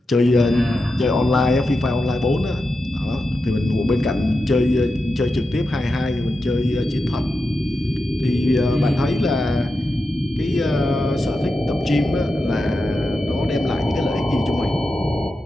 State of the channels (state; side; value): normal; both; correlation 0.89